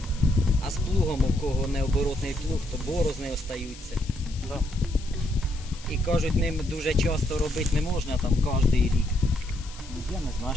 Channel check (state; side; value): noise; left; hiss, 18 dB below the sound